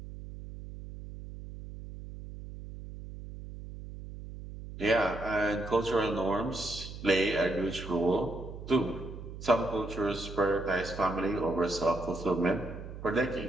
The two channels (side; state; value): right; noise; hum, 11 dB below the sound